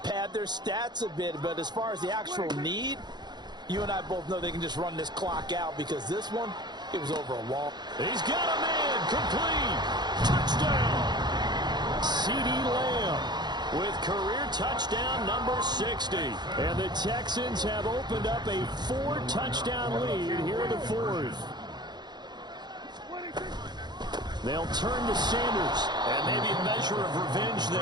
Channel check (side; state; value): left; late; 0.21 ms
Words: their stats a bit. But as far as the actual need, you and I both know they can just run this clock out, because this one, it was over a wall. He's got a man. Complete. Touchdown. CeeDee Lamb with career touchdown number 60. And the Texans have opened up a 4-touchdown lead here in the fourth. They'll turn to Sanders. And maybe a measure of revenge